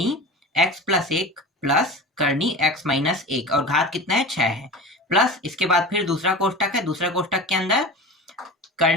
x+1 प्लस करनी x-1 और घात कितना है 6 है, प्लस इसके बाद फिर दूसरा कोष्टक है, दूसरा कोष्टक के अंदर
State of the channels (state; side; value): normal; both; correlation 0.32